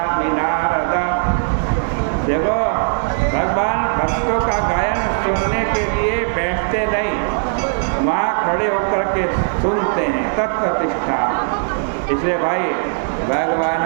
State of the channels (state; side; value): silent; left; 57 dB below the other